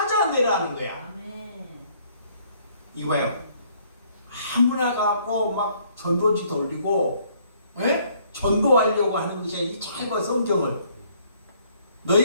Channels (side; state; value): both; inverted; correlation -0.64